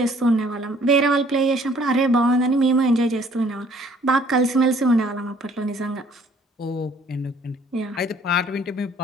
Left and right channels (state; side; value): normal; both; correlation 0.58